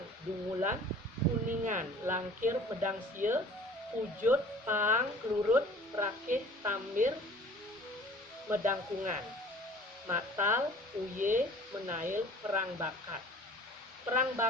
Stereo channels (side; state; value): both; normal; correlation 0.48